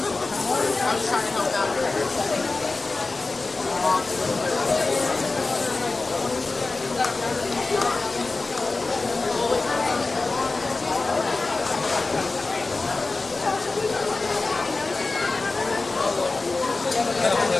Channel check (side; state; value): right; quieter; 3.6 dB